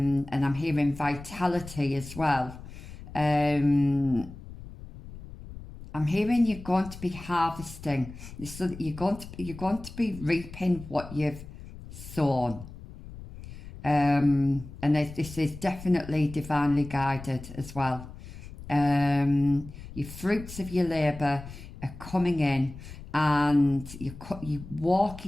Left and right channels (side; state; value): left; noise; rumble, 14 dB below the sound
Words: I'm hearing vitality as well. I'm hearing you're going to be harvesting. So you're going to be reaping what you've sown. And this is definitely divinely guided as well. Your fruits of your labour are coming in, and you're